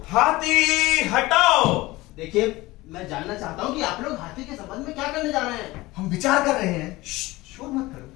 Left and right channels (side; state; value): right; quieter; 19.9 dB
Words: हाथी हटाओ। देखिए, मैं जानना चाहता हूँ कि आप लोग हाथी के संबंध में क्या करने जा रहे हैं। हम विचार कर रहे हैं। शोर मत करो।